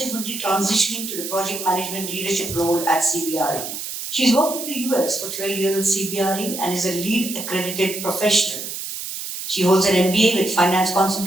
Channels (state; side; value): noise; right; hiss, 7 dB below the sound